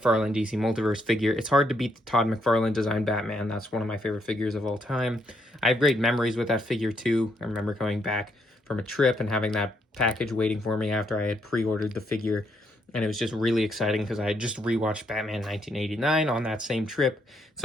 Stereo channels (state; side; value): normal; both; correlation 0.75